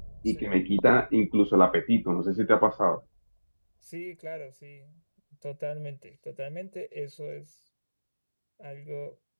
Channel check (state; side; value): inverted; both; correlation -1.00